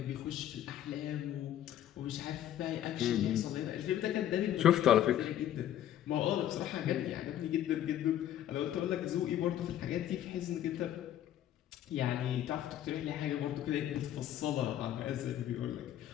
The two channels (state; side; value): quieter; right; 11.6 dB